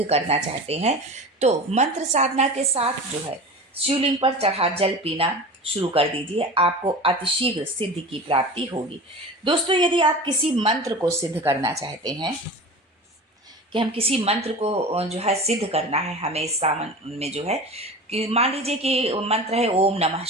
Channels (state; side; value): normal; both; correlation 0.33